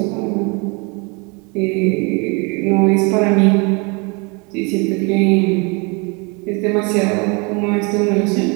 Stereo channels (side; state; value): left; quieter; 31.0 dB